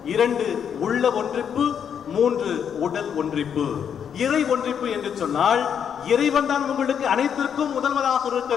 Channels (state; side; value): quieter; right; 8.0 dB